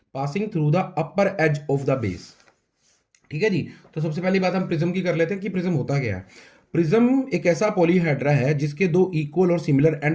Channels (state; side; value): identical; both; correlation 1.00